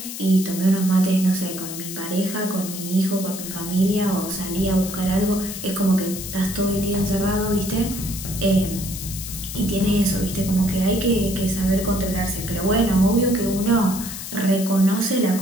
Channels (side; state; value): left; noise; hiss, 9 dB below the sound